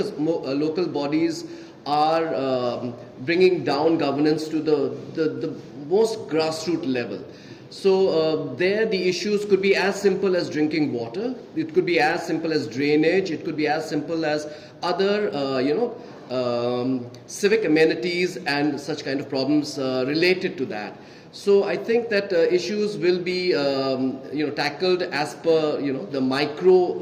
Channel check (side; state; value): both; identical; correlation 1.00